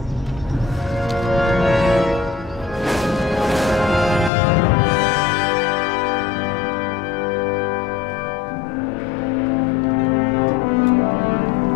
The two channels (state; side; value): drops out; right; at 4.3 s